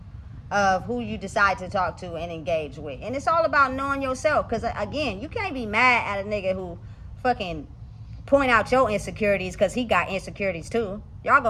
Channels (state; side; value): identical; both; correlation 1.00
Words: of who you decide to talk to and engage with. And it's all about knowing yourself. Because again, you can't be mad at a nigga who fucking point out your insecurities because he got insecurities too. Y'all